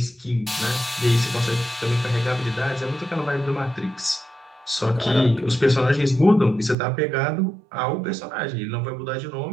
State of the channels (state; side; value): drops out; left; at 6.8 s